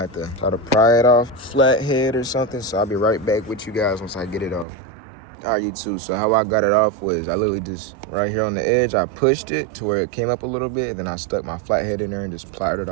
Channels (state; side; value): drops out; left; at 4.7 s